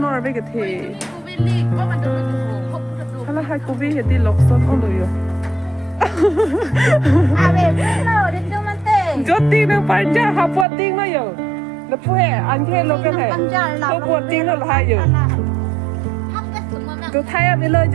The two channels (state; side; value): drops out; left; at 10.7 s